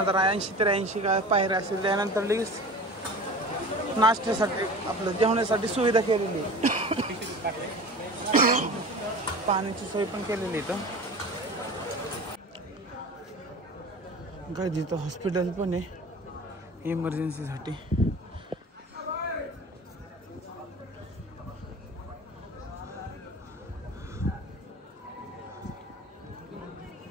काय पायऱ्या असेल. त्यानंतर लगेच नाश्त्यासाठी आपलं जेवणासाठी सुविधा केलेली पाण्याची सोय पण केलेली इथं. काय जिथं हॉस्पिटल पण आहे इमर्जन्सीसाठी.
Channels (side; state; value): both; normal; correlation 0.37